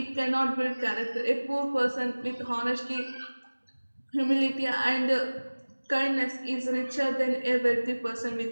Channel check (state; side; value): inverted; both; correlation -1.00